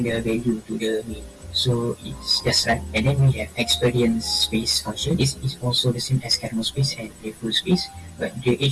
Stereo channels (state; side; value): identical; both; correlation 1.00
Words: the value to the main. So it's just right. And then we have experience space function. This is also the same as kernel space and playful space, but the